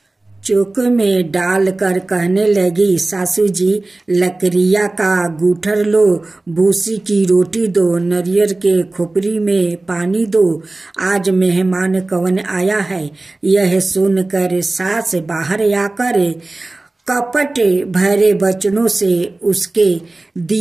चौक में डालकर कहने लगी, सासू जी लकड़ियाँ का गूठर लो, भूसी की रोटी दो, नारियल के खोपरी में पानी दो। आज मेहमान कौन आया है? यह सुनकर सास बाहर आकर कपट भरे वचनों से उसके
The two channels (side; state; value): left; quieter; 3.0 dB